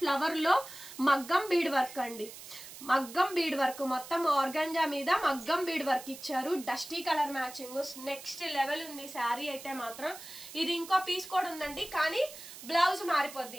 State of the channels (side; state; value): right; noise; hiss, 14 dB below the sound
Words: లో మగ్గం బీడ్ వర్క్ అండి. మగ్గం బీడ్ వర్క్, మొత్తం ఆర్గంజా మీద మగ్గం బీడ్ వర్క్ ఇచ్చారు. Dusty colour matching next level ఉంది శారీ అయితే మాత్రం. ఇది ఇంకో పీస్ కూడా ఉందండి, కానీ బ్లౌజ్